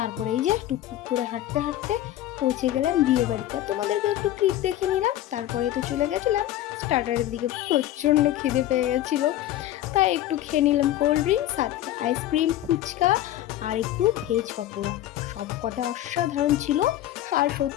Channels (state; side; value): quieter; right; 13.5 dB